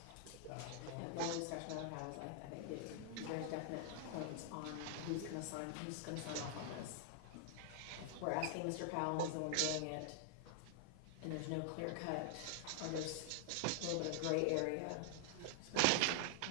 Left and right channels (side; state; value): both; different; correlation 0.00